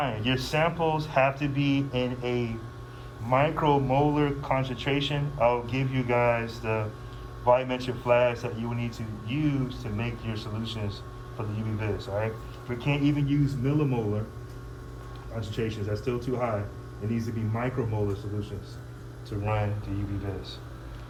your samples have to be in a micromolar concentration. I'll give you guys the volumetric flags that you will need to use to make your solutions for the UV-Vis, all right? We can't even use millimolar concentrations. That's still too high. It needs to be micromolar solutions to run the UV-Vis.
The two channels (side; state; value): both; identical; correlation 1.00